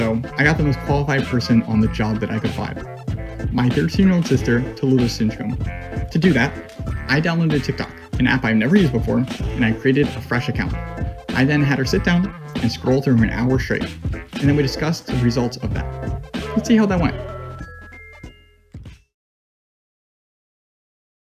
I got the most qualified person on the job that I could find. My 13-year-old sister, Tallulah Sinchcomb. To do that, I downloaded TikTok, an app I've never used before, and I created a fresh account. I then had her sit down and scroll through an hour straight, and then we discussed the results of that. Let's see how that went.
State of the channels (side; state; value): both; identical; correlation 1.00